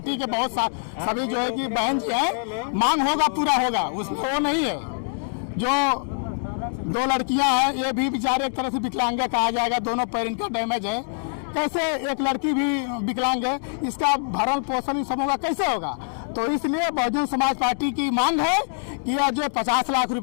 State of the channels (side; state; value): right; silent; digital silence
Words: के बहुत सभी जो है कि बहन जी हैं, मांग होगा पूरा होगा, उसमें वो नहीं है। जो 2 लड़कियां हैं ये भी बेचारे एक तरह से विकलांग कहा जाएगा, दोनों पैर इनका डैमेज है। कैसे एक लड़की भी विकलांग है, इसका भरण पोषण इन सबों का कैसे होगा? तो इसलिए बहुजन समाज पार्टी की मांग है कि यह जो 50 लाख